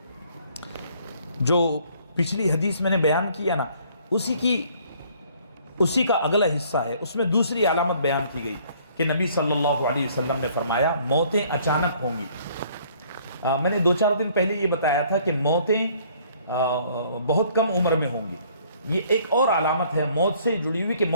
جو پچھلی حدیث میں نے بیان کیا نا، اسی کا اگلا حصہ ہے. اس میں دوسری علامت بیان کی گئی کہ نبی صلی اللہ علیہ وسلم نے فرمایا موتیں اچانک ہوں گی. میں نے 2-4 دن پہلے یہ بتایا تھا کہ موتیں بہت کم عمر میں ہوں گی. یہ ایک اور علامت ہے موت سے جڑی ہوئی کہ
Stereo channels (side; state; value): both; inverted; correlation -0.59